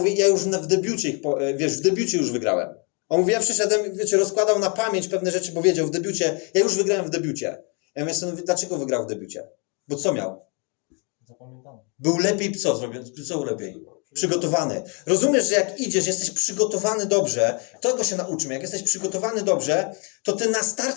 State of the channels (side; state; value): right; quieter; 35.3 dB